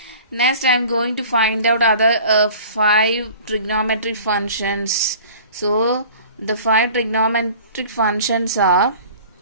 Next I am going to find out other 5 trigonometric functions. So the 5 trigonometric functions are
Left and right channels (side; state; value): both; inverted; correlation -0.45